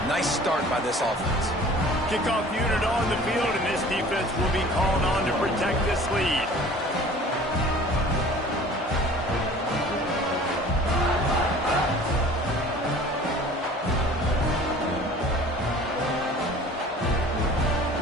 Nice start by this offense. Kickoff unit on the field, and this defense will be called on to protect this lead.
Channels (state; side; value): normal; both; correlation 0.47